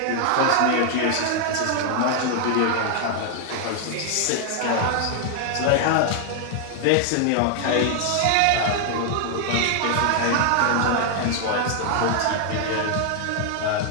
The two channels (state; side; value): different; both; correlation 0.00